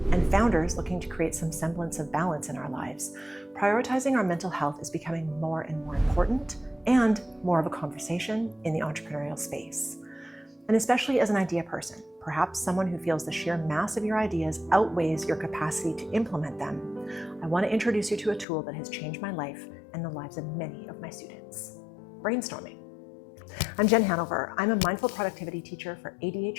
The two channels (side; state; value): right; drops out; at 18.4 s